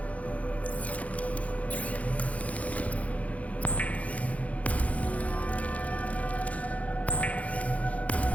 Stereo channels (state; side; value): late; right; 0.067 ms